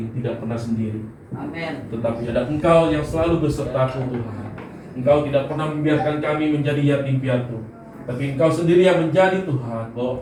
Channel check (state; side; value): identical; both; correlation 1.00